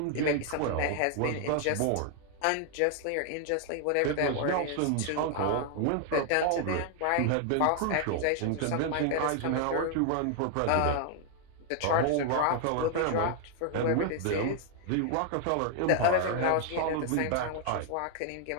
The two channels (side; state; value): both; different; correlation 0.00